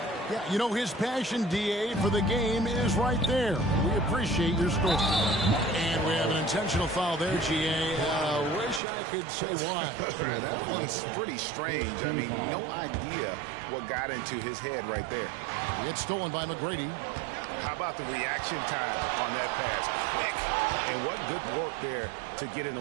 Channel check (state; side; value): drops out; left; at 8.8 s